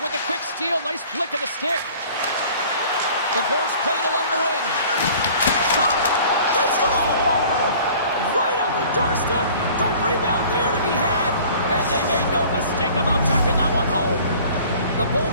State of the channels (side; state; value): both; inverted; correlation -0.49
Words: with a quick steal. Nice flick of the stick. The Bolts played along the wing. Shot. They score! Right on the doorstep. The rebound there to be had. And they made no mistake about tucking that one home. The